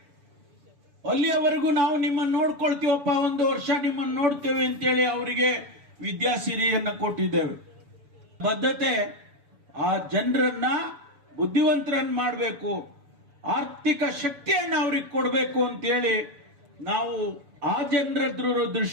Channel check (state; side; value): late; left; 7.0 ms